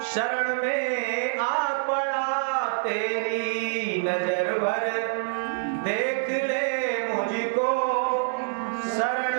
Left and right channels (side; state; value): left; silent; digital silence